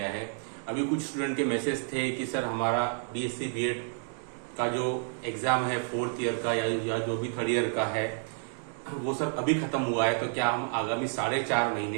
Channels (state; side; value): silent; left; 58 dB below the other